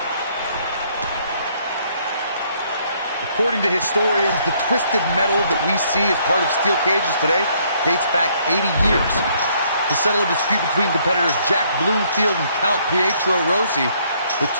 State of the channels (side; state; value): both; inverted; correlation -0.66